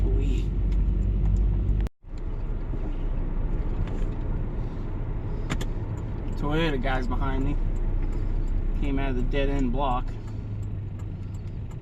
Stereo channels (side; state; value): both; identical; correlation 1.00